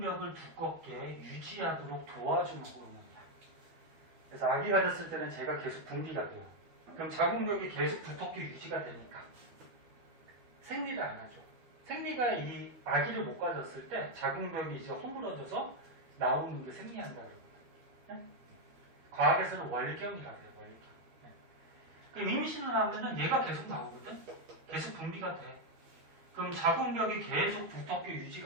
두껍게 유지하도록 도와주는 호르몬이야. 그래서 아기 가졌을 때는 제가 계속 분비가 돼요. 그럼 자궁벽이 계속 두껍게 유지가 되니까 생리를 안 하죠. 생리가 이 아기를 못 가졌을 때 자궁벽이 이제 허물어져서 나오는 게 생리한다 그러거든. 네? 과학에서는 월경이라고 해요. 월경. 네. 그럼 임신을 하면은 얘가 계속 나오거든. 계속 분비가 돼. 그럼 자궁벽이 계속 두텁게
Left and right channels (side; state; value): left; late; 12 ms